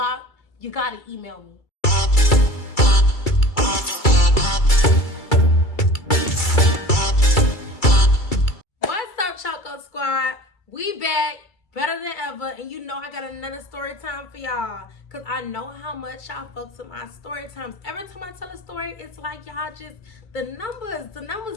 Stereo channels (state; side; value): late; right; 2.3 ms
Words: You gotta email me. What's up, Choco Squad? We back. Better than ever. And you know I got another story time for y'all. Because I know how much y'all fucks with my story times. Every time I tell a story, it's like y'all just, the